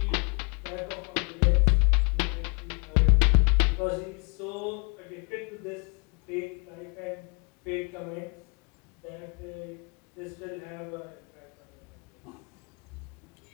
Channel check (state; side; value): quieter; right; 33.4 dB